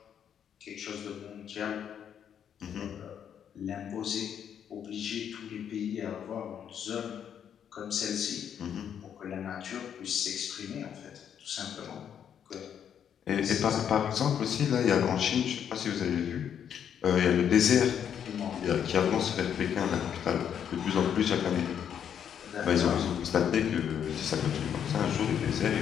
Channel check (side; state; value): right; quieter; 8.7 dB